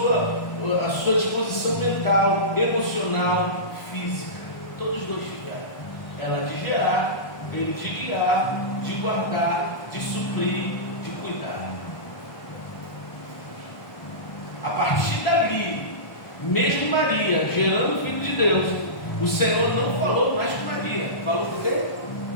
sua disposição mental, emocional, física. Todos dois tiveram. Ela de gerar, ele de guiar, de guardar, de suprir, de cuidar. A partir dali, mesmo Maria gerando o Filho de Deus, o Senhor não falou mais com Maria. Falou por quê?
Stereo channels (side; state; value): right; late; 1.2 ms